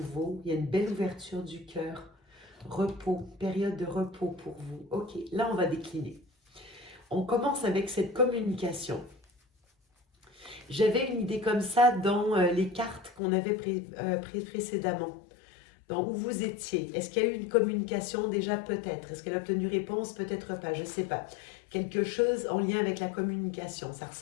Il y a une belle ouverture du cœur. Repos, période de repos pour vous. Ok, là, on va décliner. On commence avec cette communication. J'avais une idée comme ça dans les cartes qu'on avait prises précédemment. Dans où vous étiez. Est-ce qu'il y a eu une communication déjà? Peut-être. Est-ce qu'elle a obtenu réponse? Peut-être pas, je ne sais pas. Quelque chose en lien avec la communication, ça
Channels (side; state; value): right; drops out; at 13.2 s